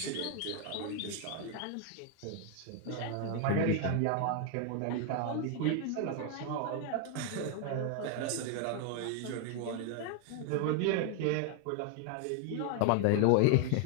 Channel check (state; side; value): different; both; correlation 0.00